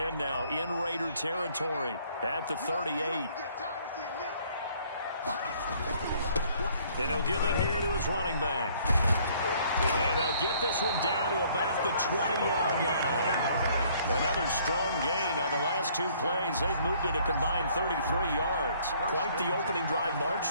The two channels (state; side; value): inverted; both; correlation -0.61